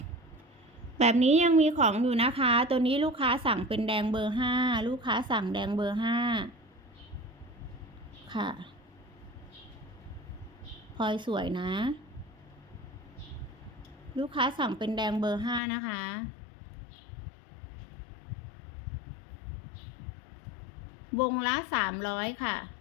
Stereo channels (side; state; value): right; drops out; at 15.6 s